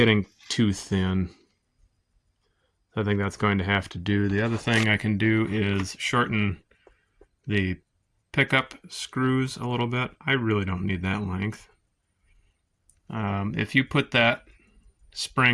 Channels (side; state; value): both; identical; correlation 1.00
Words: too thin. I think that's going to have to do. The other thing I can do is shorten the pickup screws a little bit. I really don't need that length. If you put that